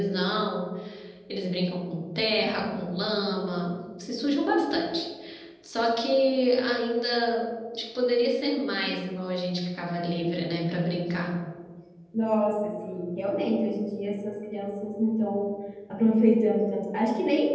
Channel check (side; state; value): both; identical; correlation 1.00